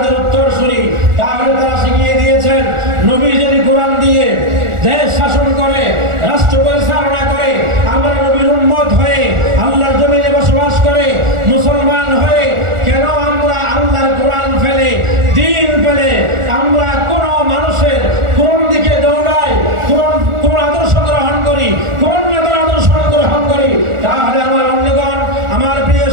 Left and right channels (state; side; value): late; left; 1.4 ms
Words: উত্তরসূরি। তাহলে তারা শিখিয়ে দিয়েছেন, নবী যদি কোরআন দিয়ে দেশ শাসন করে, রাষ্ট্র পরিচালনা করে, আমরা নবীর উম্মত হয়ে আল্লাহর জমিনে বসবাস করে মুসলমান হয়ে কেন আমরা আল্লাহর কোরআন ফেলে, দ্বীন ফেলে আমরা কোন মানুষের কোন দিকে দৌড়াই, কোন আদর্শ গ্রহণ করি, কোন নেতার আদর্শ গ্রহণ করি? তাহলে আমার অন্যগণ, আমার প্রিয়